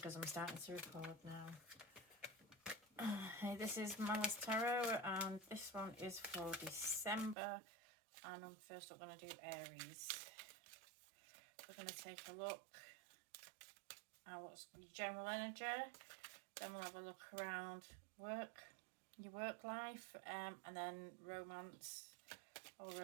I'm starting to record now. Hey, this is Malice Tarot, and this one is for December, and I'm first up going to do Aries. We're going to take a look at what's general energy, then we'll have a look around your work life, and then romance or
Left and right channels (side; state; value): left; drops out; at 7.4 s